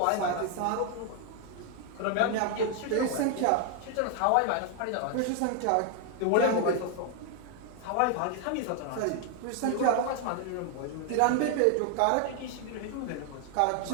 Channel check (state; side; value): different; both; correlation 0.01